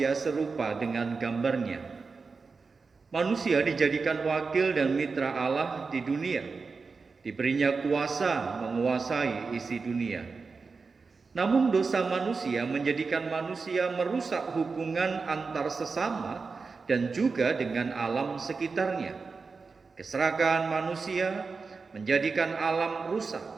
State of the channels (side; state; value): left; quieter; 4.6 dB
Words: serupa dengan gambarnya. Manusia dijadikan wakil dan mitra Allah di dunia. Diberinya kuasa menguasai isi dunia. Namun dosa manusia menjadikan manusia merusak hubungan antar sesama dan juga dengan alam sekitarnya. Keserakahan manusia menjadikan alam